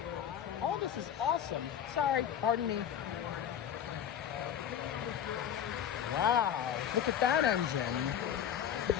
All this is awesome. Sorry, pardon me. Wow! Look at that engine.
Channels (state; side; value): quieter; right; 9.4 dB